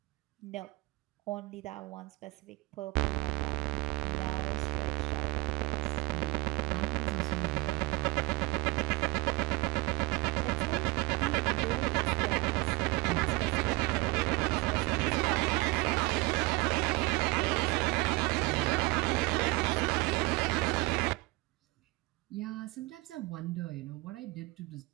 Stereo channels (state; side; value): quieter; left; 22.9 dB